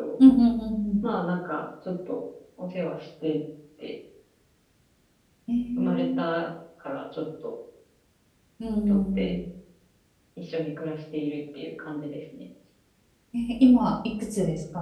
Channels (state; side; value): identical; both; correlation 1.00